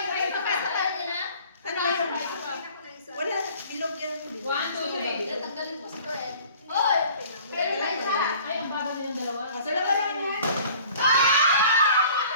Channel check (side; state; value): both; inverted; correlation -0.50